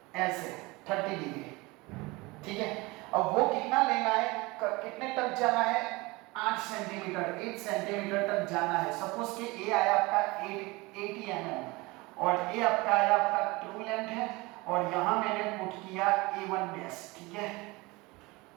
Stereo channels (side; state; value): left; quieter; 23.5 dB